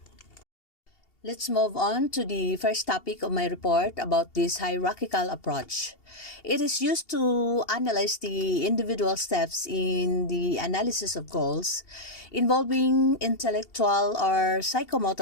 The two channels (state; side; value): late; right; 2.7 ms